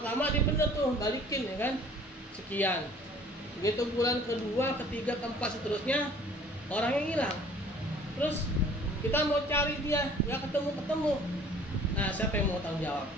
dia bener tuh balikin ya kan, sekian. Begitu bulan kedua, ketiga, keempat seterusnya orangnya hilang. Terus kita mau cari dia, nggak ketemu. Nah, siapa yang mau tanggung jawab?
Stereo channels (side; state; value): both; normal; correlation 0.52